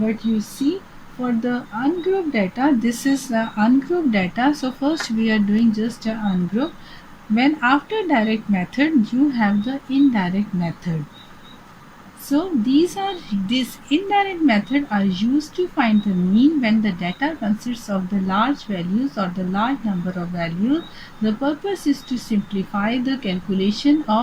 you see, for the ungrouped data, this is the ungrouped data. So first we are doing just a ungroup. When after direct method, you have the indirect method. So this indirect method are used to find the mean when the data consists of the large values or the large number of values. The purpose is to simplify the calculation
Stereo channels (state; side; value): identical; both; correlation 1.00